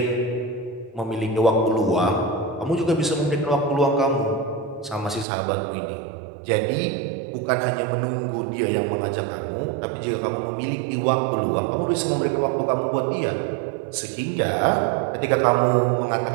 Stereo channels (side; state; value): left; drops out; at 5.2 s